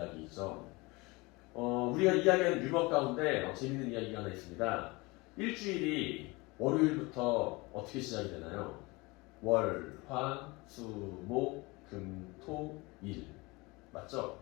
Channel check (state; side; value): quieter; right; 24.4 dB